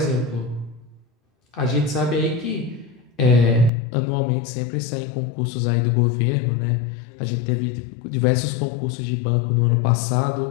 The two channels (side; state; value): right; drops out; at 3.7 s